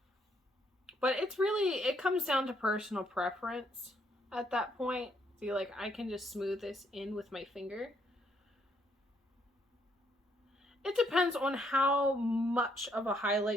But it's really, it comes down to personal preference at that point. See, like, I can just smooth this in with my finger. It depends on how much of a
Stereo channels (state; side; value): normal; both; correlation 0.71